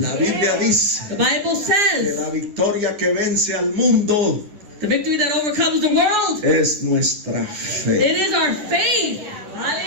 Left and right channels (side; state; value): left; late; 10 ms